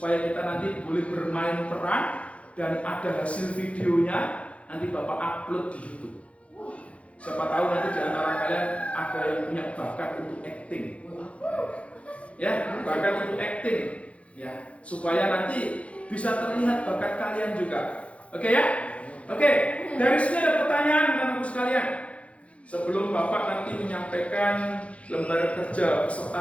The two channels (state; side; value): late; right; 0.063 ms